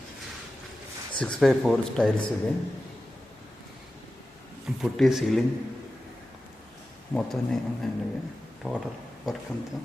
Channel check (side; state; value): both; normal; correlation 0.93